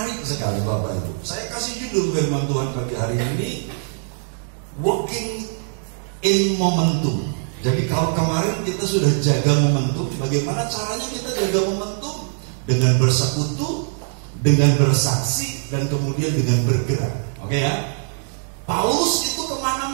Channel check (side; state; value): left; silent; digital silence